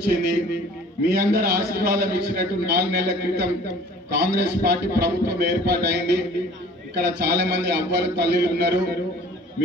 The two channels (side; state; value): both; normal; correlation 0.49